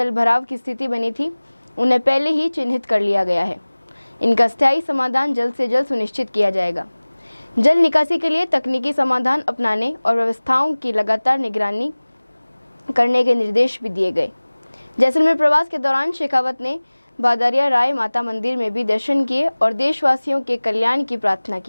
भराव की स्थिति बनी थी, उन्हें पहले ही चिन्हित कर लिया गया है। इनका स्थायी समाधान जल्द से जल्द सुनिश्चित किया जाएगा। जल निकासी के लिए तकनीकी समाधान अपनाने और व्यवस्थाओं की लगातार निगरानी करने के निर्देश भी दिए गए। जैसलमेर प्रवास के दौरान शेखावत ने बादारिया राय माता मंदिर में भी दर्शन किए और देशवासियों के कल्याण की प्रार्थना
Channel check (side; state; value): both; inverted; correlation -1.00